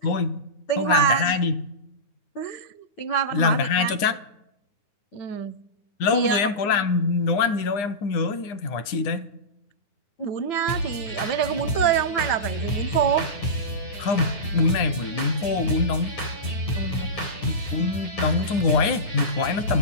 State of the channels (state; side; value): late; right; 9.6 ms